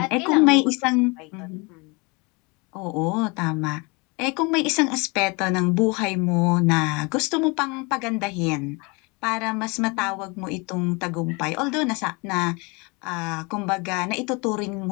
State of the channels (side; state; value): right; quieter; 28.6 dB